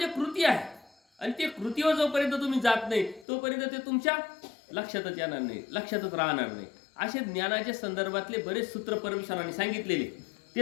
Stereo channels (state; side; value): drops out; right; at 3.2 s